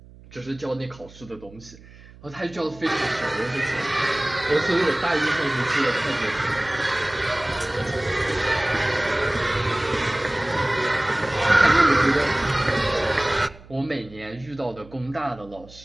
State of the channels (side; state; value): right; noise; hum, 21 dB below the sound